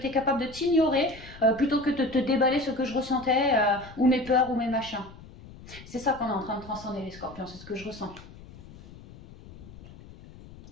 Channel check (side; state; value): left; noise; rumble, 18 dB below the sound